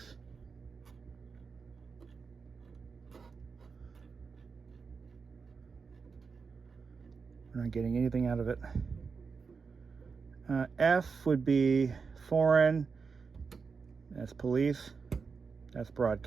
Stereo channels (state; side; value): quieter; left; 5.2 dB